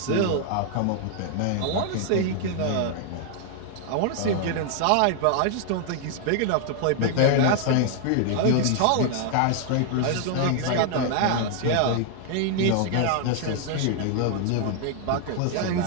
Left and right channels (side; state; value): both; different; correlation 0.00